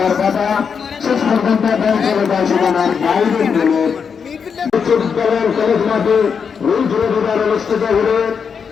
বাবা শেষ পর্যন্ত বল চলে যায় সীমানার বাইরের বলে বিশ্ববিদ্যালয়ের কলেজ মাঠে রুল জুড়ে দেবার অনুষ্ঠিত হলে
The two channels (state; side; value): quieter; right; 6.4 dB